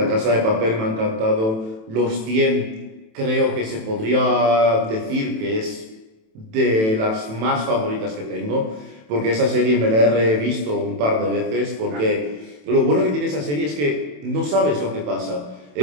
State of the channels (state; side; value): late; left; 27 ms